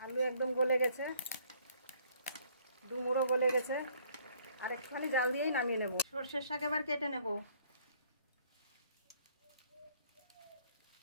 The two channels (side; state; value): both; inverted; correlation -0.62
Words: আলু একদম গলে গেছে, ডুমুরও গলে গেছে। আর একটুখানি জাল দিয়েই নামিয়ে নেব। সর্ষের শাক এবার কেটে নেব।